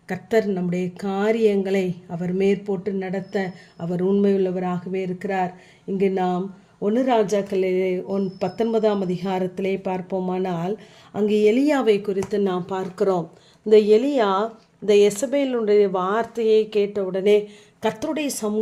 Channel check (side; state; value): both; identical; correlation 1.00